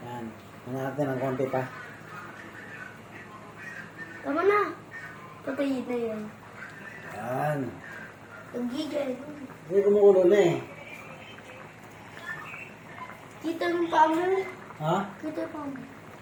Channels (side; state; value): both; identical; correlation 1.00